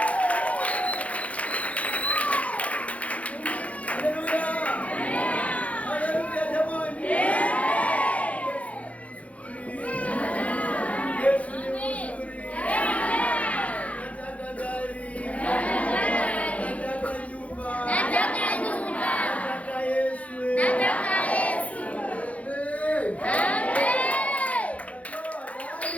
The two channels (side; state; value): right; late; 0.066 ms